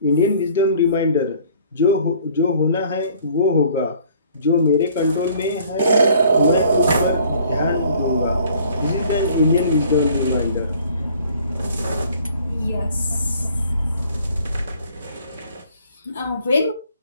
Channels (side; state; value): both; inverted; correlation -0.56